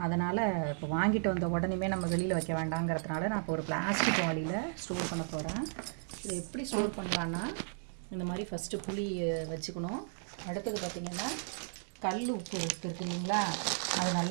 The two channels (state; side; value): silent; left; digital silence